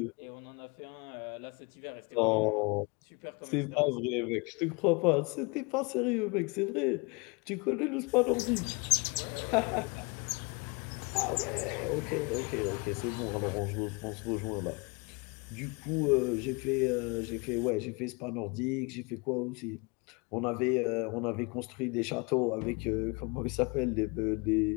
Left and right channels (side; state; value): right; quieter; 29.7 dB